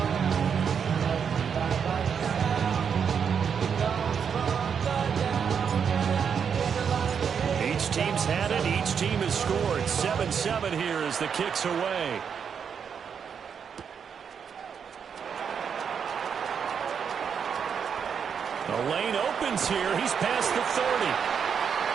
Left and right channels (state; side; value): quieter; left; 7.1 dB